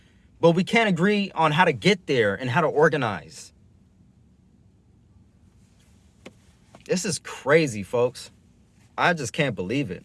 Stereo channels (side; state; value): both; identical; correlation 1.00